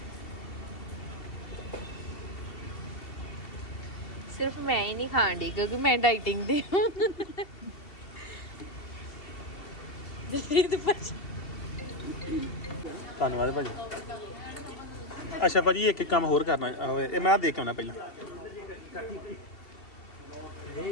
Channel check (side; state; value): right; late; 2.7 ms